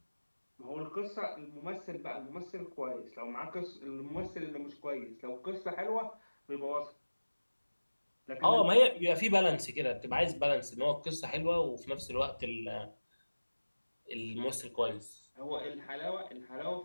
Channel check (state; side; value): inverted; both; correlation -1.00